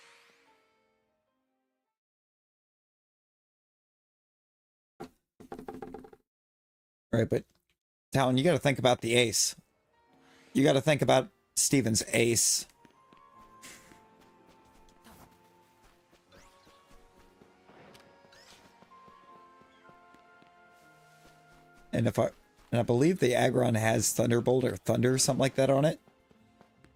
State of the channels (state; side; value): identical; both; correlation 1.00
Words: Right, but Talon, you got to think about the ace. You got to think about Steven's ace. And I believe the Aggron has Thunderbolt or Thunder, something like that on it.